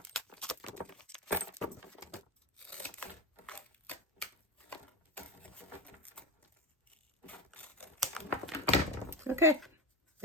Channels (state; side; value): normal; both; correlation 0.18